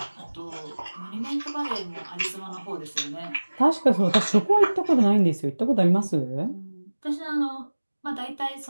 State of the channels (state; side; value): inverted; both; correlation -1.00